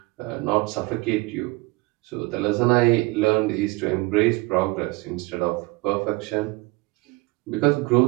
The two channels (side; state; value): left; quieter; 23.5 dB